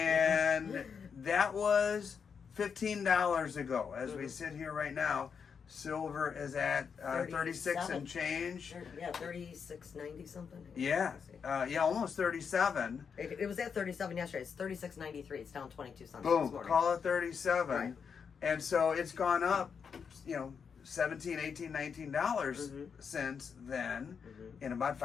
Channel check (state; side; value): quieter; right; 6.4 dB